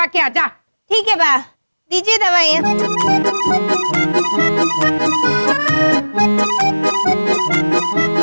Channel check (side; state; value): both; inverted; correlation -1.00